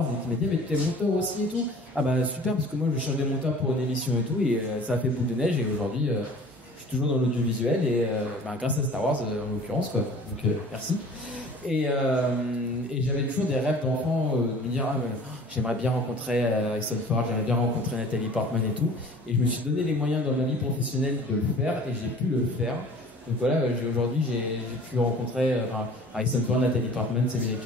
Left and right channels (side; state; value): both; normal; correlation 0.47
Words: et qui m'a dit, mais tu es monteur aussi et tout. Ah bah super, parce que moi, je cherche des monteurs pour une émission et tout. Et ça a fait boule de neige et aujourd'hui, je suis toujours dans l'audiovisuel et grâce à Star Wars en l'occurrence, quoi. Donc merci. Et j'avais toujours des rêves d'enfant de me dire j'aimerais bien rencontrer Harrison Ford, j'aimerais bien rencontrer Nathalie Portman et tout. Et je me suis donné les moyens dans ma vie professionnelle de le faire et j'ai pu le faire. Donc voilà, aujourd'hui j'ai pu rencontrer Harrison Ford, Nathalie Portman, Samuel L.